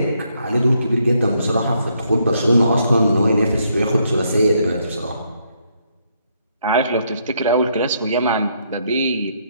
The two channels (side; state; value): both; inverted; correlation -0.73